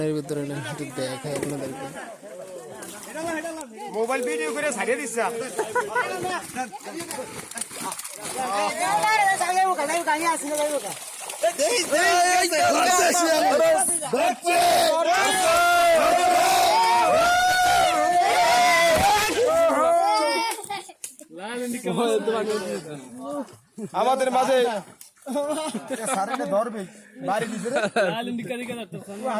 ভিতরে একটু দেখাই আপনাদেরকে মোবাইল ভিডিও করে ছাড়িয়ে দিচ্ছে আমাদের মাঝে ধরবে বাড়ি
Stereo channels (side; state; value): both; identical; correlation 1.00